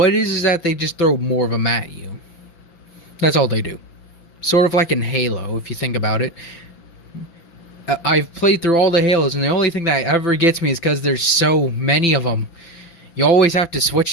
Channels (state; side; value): late; right; 5.9 ms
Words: it is that they just throw more of them at you. That's all they do. Sort of like in Halo, if you think about it. I've played through all the Halos, and the only thing that ever gets me is because there's so many of them. You always have to